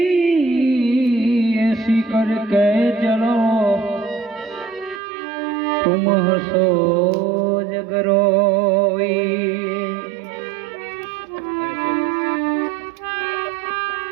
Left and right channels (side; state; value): left; drops out; at 5.0 s